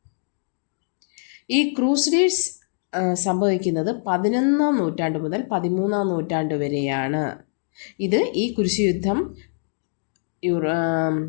ഈ ക്രൂസഡേഴ്സ് സംഭവിക്കുന്നത് 11ാം നൂറ്റാണ്ട് മുതൽ 13ാം നൂറ്റാണ്ട് വരെയാണ്. ഇത് ഈ കുരിശുയുദ്ധം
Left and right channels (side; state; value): right; silent; 63 dB below the other